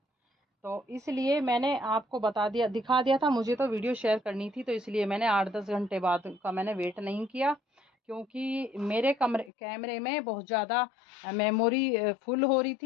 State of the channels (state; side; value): drops out; right; at 9.5 s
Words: तो इसलिए मैंने आपको बता दिया, दिखा दिया था, मुझे तो वीडियो शेयर करनी थी, तो इसलिए मैंने 8-10 घंटे बाद का मैंने वेट नहीं किया, क्योंकि मेरे कैमरे में बहुत ज़्यादा मेमोरी फुल हो रही